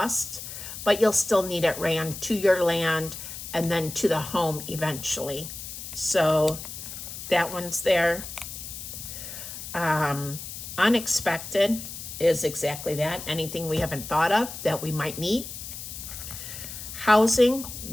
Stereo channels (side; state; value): left; noise; hiss, 10 dB below the sound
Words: but you'll still need it ran to your land and then to the home eventually. So that one's there. Unexpected is exactly that. Anything we haven't thought of that we might need. Housing,